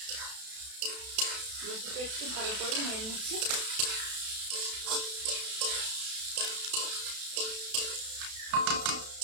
রসুনটা একটু ভালো করে নেড়ে নিচ্ছি।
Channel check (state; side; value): late; left; 32 ms